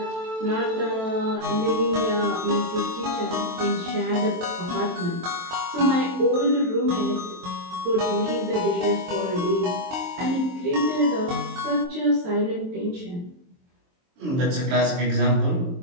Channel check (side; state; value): left; late; 23 ms